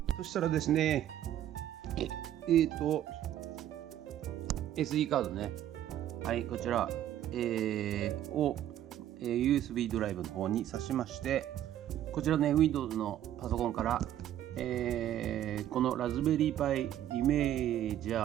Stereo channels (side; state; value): left; quieter; 11.8 dB